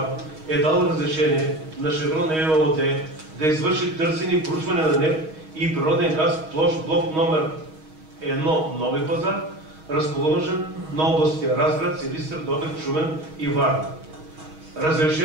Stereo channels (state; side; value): late; left; 6.3 ms